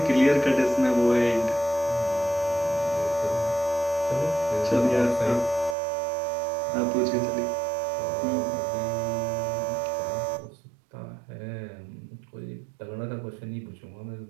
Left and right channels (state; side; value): drops out; left; at 5.8 s